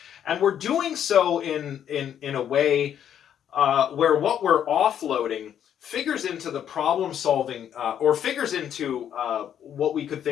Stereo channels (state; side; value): quieter; right; 9.5 dB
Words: And we're doing so in a way where what we're offloading figures into the problem solving, or figures into what we could